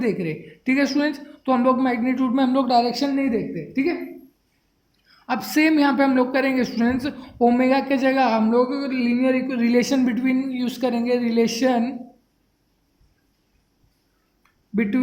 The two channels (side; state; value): both; identical; correlation 1.00